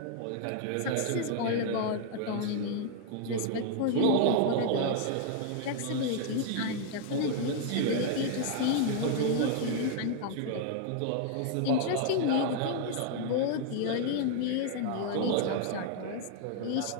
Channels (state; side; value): different; both; correlation 0.00